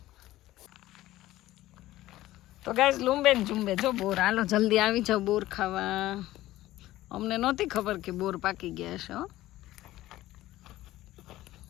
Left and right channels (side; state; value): right; quieter; 15.8 dB